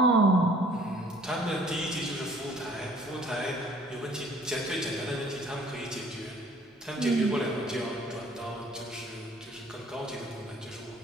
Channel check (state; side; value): normal; both; correlation 0.56